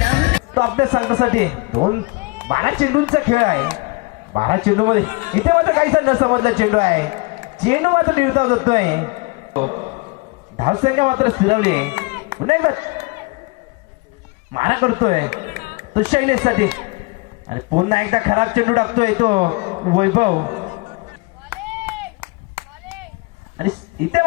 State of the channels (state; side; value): quieter; right; 26.3 dB